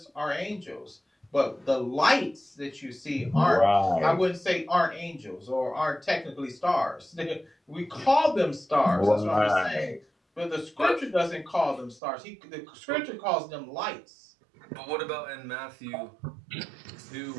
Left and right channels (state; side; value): drops out; left; at 12.0 s